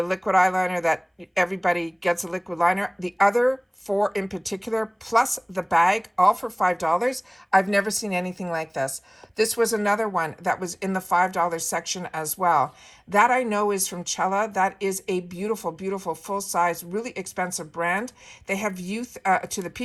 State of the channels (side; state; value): both; identical; correlation 1.00